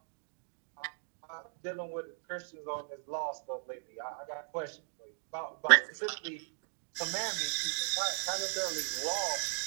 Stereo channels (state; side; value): silent; left; digital silence